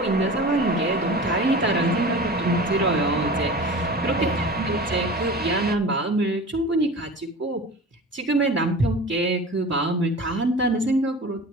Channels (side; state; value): both; normal; correlation 0.36